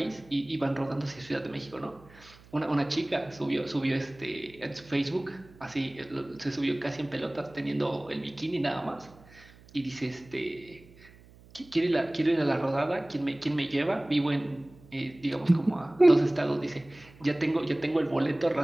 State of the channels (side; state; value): right; noise; hum, 24 dB below the sound